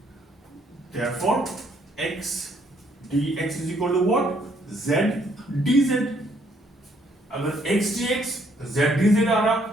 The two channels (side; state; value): both; normal; correlation 0.68